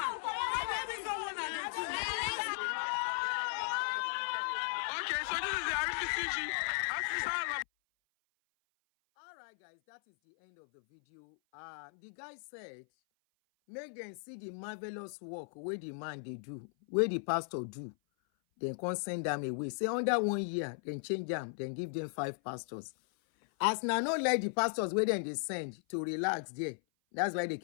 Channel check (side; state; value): right; silent; 53 dB below the other